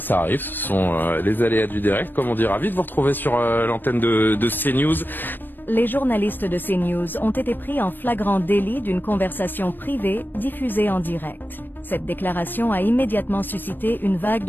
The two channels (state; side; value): late; right; 0.093 ms